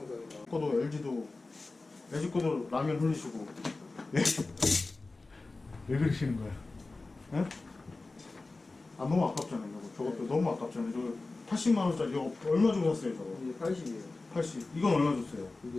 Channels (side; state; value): right; quieter; 3.4 dB